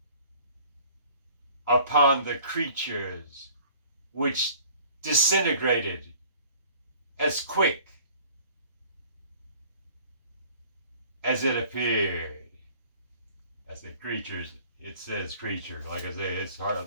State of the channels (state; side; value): inverted; both; correlation -0.51